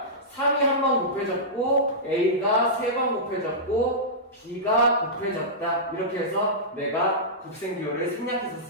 3이 한 번 곱해졌고 a가 3번 곱해졌고 b가 곱해졌다. 이렇게 해서 내가 곱셈 기호를 생략해서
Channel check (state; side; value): normal; both; correlation -0.15